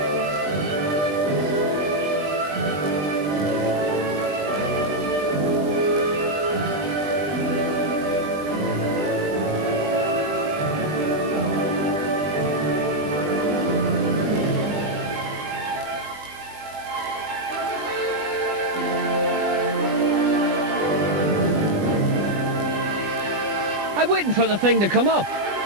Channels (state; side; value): late; left; 20 ms